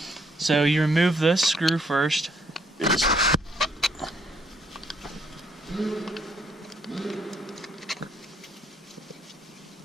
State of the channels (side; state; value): both; normal; correlation 0.69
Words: So you remove this screw first.